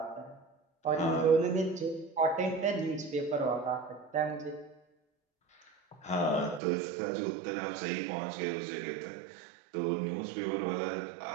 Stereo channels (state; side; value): drops out; left; at 6.6 s